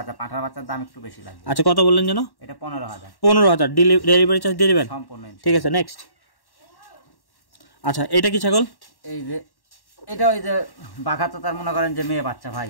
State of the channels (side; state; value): right; late; 1.1 ms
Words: পাঠার বাচ্চার দাম একটু বেশি লাগবে। আচ্ছা, কত বললেন যেন? এটা 15,000। 15,000 ডেলিভারি চার্জ দিয়ে দিবেন সম্পূর্ণ। ঠিক আছে, নেক্সট। আচ্ছা, এটা কি ছাগল? এই যে এটা ওই যে বাঘা তো তার মনে করেন যে মেয়ে বাচ্চা ভাই।